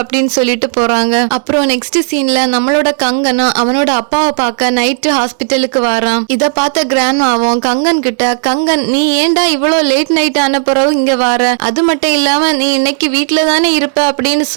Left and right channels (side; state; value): left; silent; digital silence